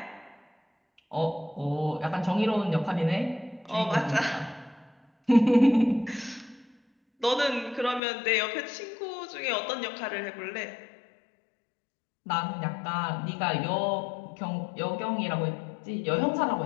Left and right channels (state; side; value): drops out; right; at 8.0 s